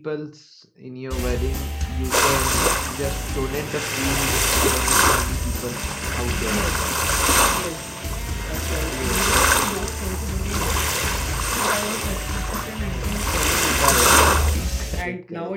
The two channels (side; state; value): both; identical; correlation 1.00